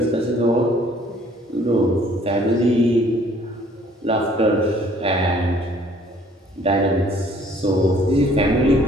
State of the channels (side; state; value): both; normal; correlation 0.58